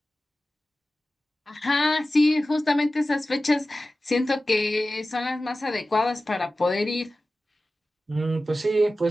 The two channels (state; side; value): normal; both; correlation 0.95